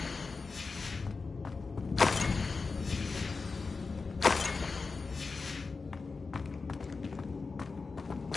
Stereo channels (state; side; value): quieter; right; 4.3 dB